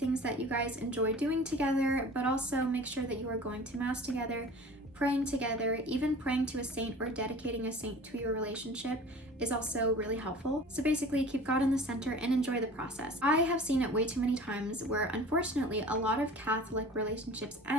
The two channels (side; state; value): both; normal; correlation 0.43